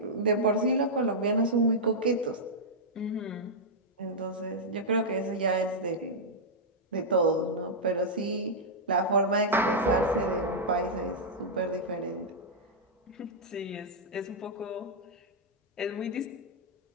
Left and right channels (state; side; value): normal; both; correlation -0.07